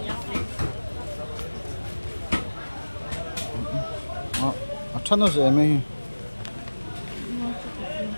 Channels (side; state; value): both; inverted; correlation -1.00